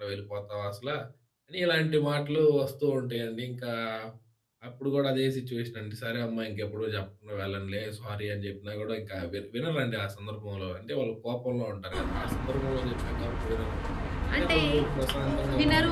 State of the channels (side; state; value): both; identical; correlation 1.00